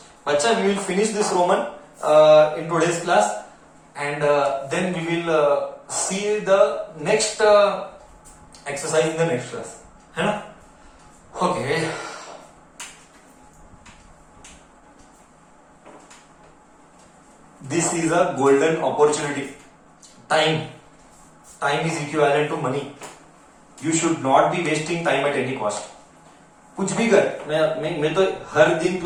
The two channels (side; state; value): both; identical; correlation 1.00